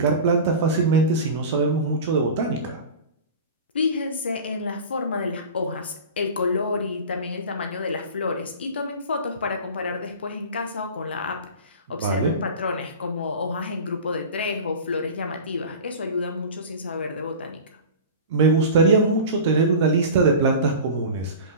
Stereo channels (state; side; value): inverted; both; correlation -0.33